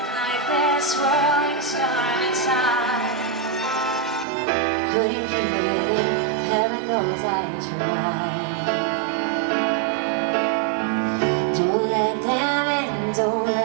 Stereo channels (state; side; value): drops out; left; at 4.2 s